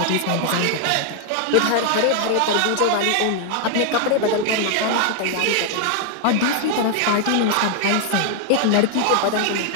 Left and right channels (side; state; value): both; different; correlation 0.00